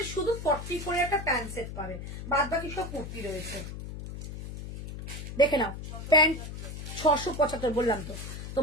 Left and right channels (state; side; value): noise; left; hum, 9 dB below the sound